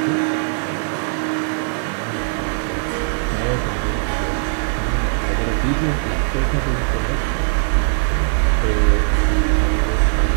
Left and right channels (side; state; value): left; silent; digital silence